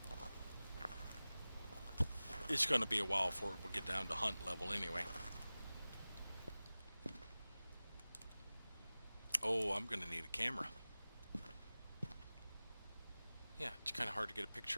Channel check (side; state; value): both; inverted; correlation -0.97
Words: It's going to be a while before we get down to hunt level anyway. Oh, I'm going to need a camera. Yeah, it's kind of hard to get a